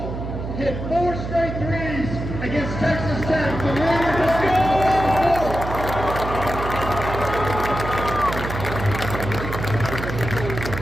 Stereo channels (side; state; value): right; noise; hum, 6 dB below the sound